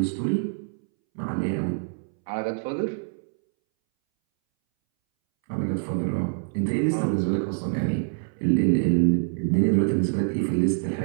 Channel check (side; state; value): left; silent; 61 dB below the other